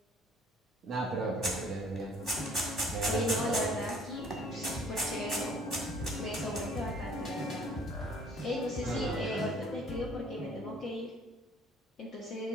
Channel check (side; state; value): both; normal; correlation 0.56